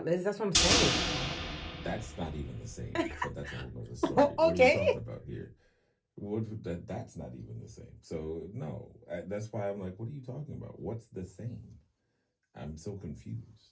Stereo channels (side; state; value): both; identical; correlation 1.00